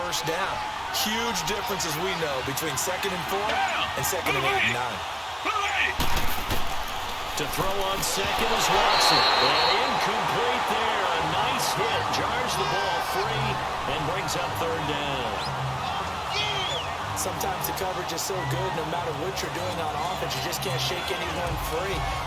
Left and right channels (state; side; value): identical; both; correlation 1.00